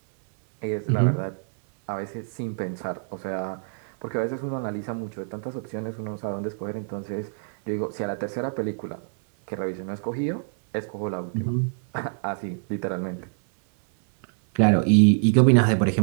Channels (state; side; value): silent; left; 61 dB below the other